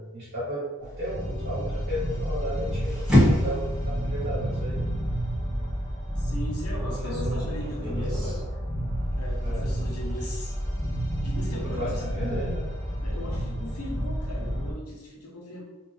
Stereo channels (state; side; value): normal; both; correlation 0.80